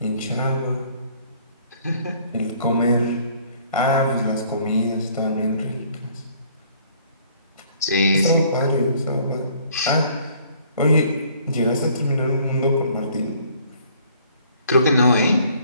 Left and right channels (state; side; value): inverted; both; correlation -0.59